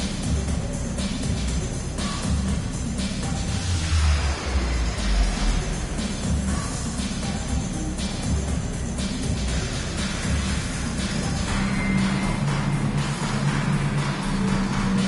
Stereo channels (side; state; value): both; identical; correlation 1.00